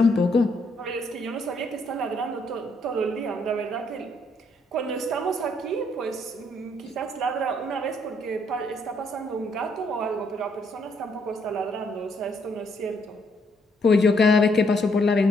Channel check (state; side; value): normal; both; correlation 0.71